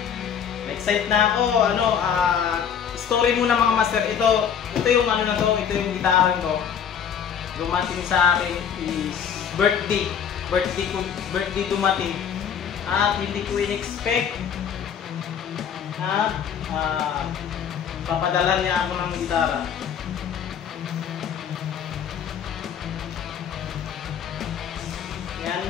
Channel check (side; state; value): right; quieter; 8.0 dB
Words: Excited na ako. Story muna mga master. Ito yung ano na to. Ito yung gitara ko. Dumating sa akin is birthday. Birthday dumating. At hindi ko in-expect na papadala niya ako ng gitara. Yan.